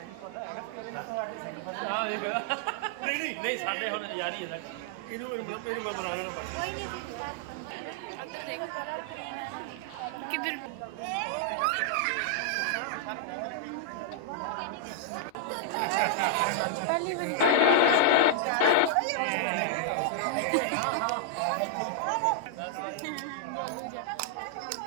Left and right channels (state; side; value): different; both; correlation -0.01